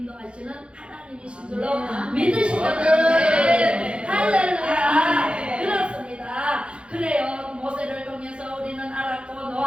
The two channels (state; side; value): late; left; 0.057 ms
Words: 하나님이신 줄로 믿으시거든. 할렐루야. 그렇습니다. 그래요. 모세를 통해서 우리는 알았고,